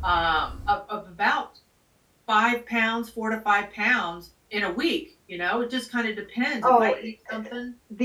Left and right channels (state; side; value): identical; both; correlation 1.00